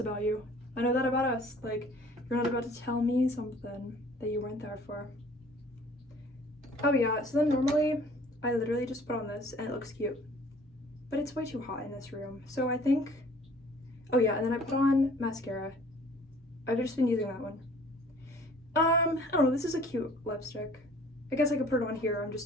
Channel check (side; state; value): both; normal; correlation 0.53